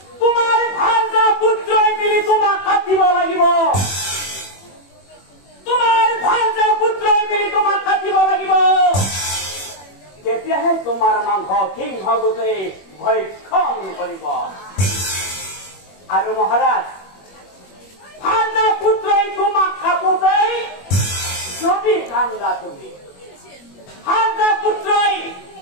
তোমাৰ ভাঞ্জা পুত্ৰই মিলি তোমাক কাটিব লাগিব তোমাৰ ভাঞ্জা পুত্ৰই মিলি তোমাক কাটিব লাগিব তেতিয়াহে তোমাৰ মাংস সিংহ গোটেই ভক্ষণ কৰিব আৰু মহাৰাজ ভাঞ্জা পুত্ৰই তোমাক কাটোতেই যদি কান্দা তুমি ভাঞ্জা পুত্ৰই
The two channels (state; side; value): late; right; 21 ms